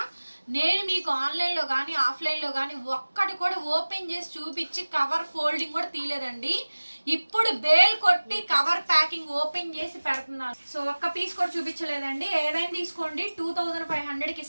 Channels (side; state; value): both; inverted; correlation -1.00